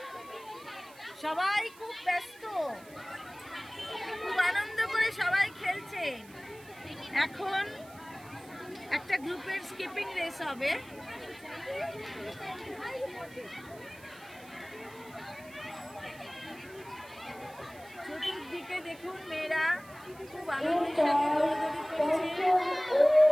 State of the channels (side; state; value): right; noise; hiss, 22 dB below the sound